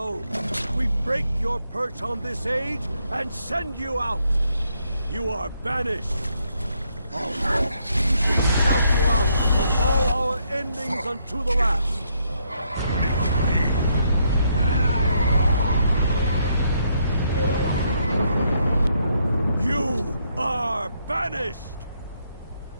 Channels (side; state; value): both; inverted; correlation -0.74